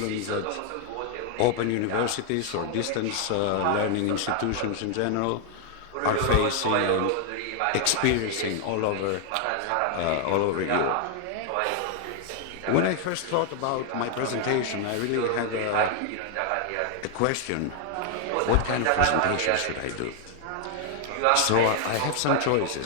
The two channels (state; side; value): different; both; correlation 0.00